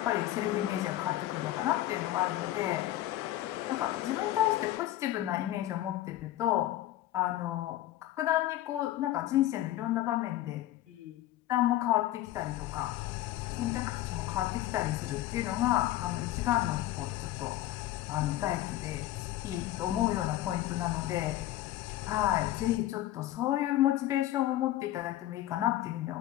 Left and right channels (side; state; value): right; quieter; 14.6 dB